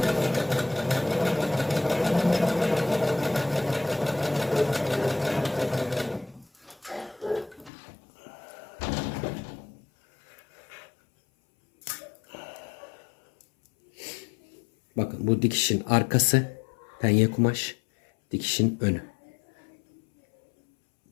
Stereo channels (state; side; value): drops out; right; at 7.7 s